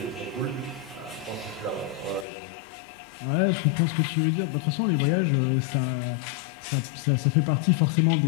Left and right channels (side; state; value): right; drops out; at 2.2 s